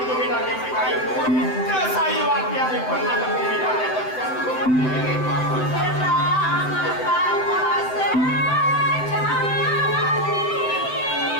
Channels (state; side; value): late; right; 7.8 ms